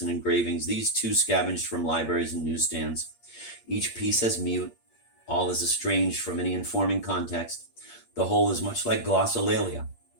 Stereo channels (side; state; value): right; late; 8.5 ms